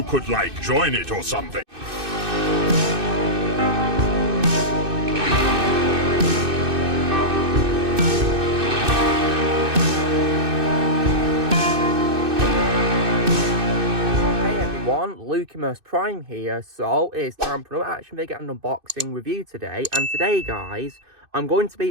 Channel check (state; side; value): late; left; 2.6 ms